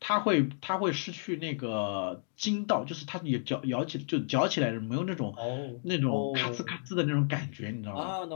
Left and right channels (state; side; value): silent; right; digital silence